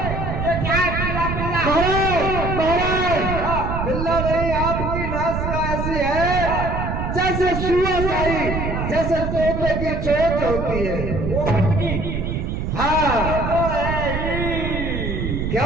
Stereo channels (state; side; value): noise; right; rumble, 2 dB below the sound